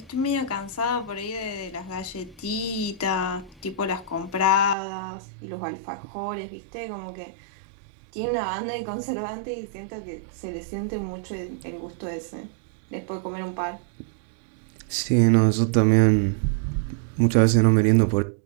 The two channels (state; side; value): drops out; left; at 4.8 s